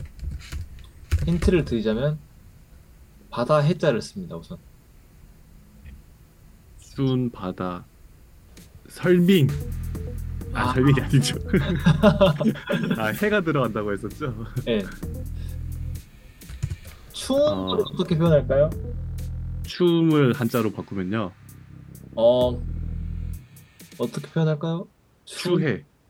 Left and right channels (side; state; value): both; identical; correlation 1.00